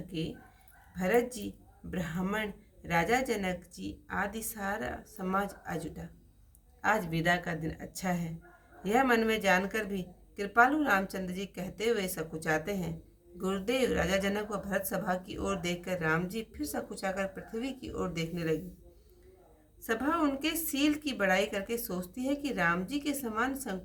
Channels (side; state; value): both; identical; correlation 1.00